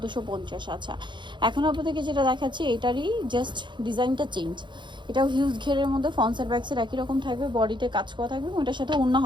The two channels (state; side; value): late; left; 0.23 ms